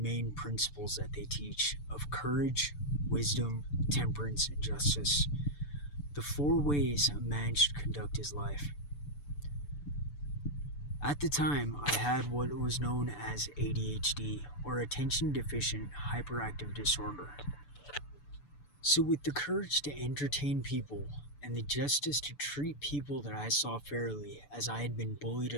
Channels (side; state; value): right; late; 6.9 ms